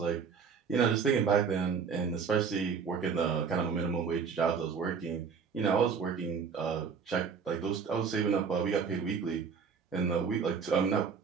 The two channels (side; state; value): left; quieter; 6.0 dB